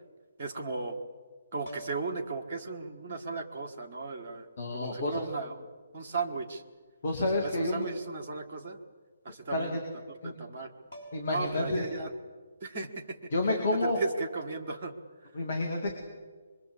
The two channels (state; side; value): inverted; both; correlation -0.69